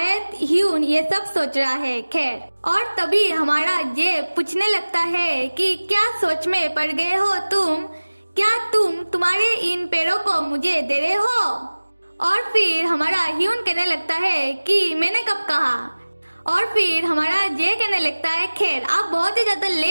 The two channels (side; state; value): both; inverted; correlation -1.00